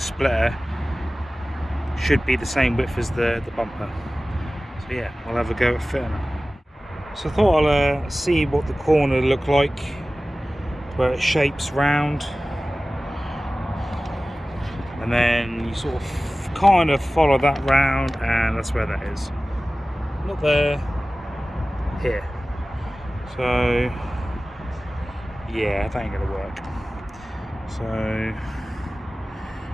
should be the same width as the bumper. So yeah, we'll have a go at fitting it. So I thought I'll see what the corner looked like, where it shapes round, and then you sort of kind of follow that round, and that's where that is. Not there, here. So yeah, that ain't gonna work. So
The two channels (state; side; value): normal; both; correlation 0.97